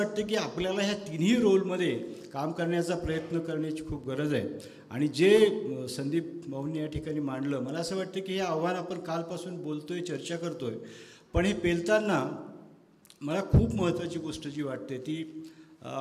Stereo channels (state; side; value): identical; both; correlation 1.00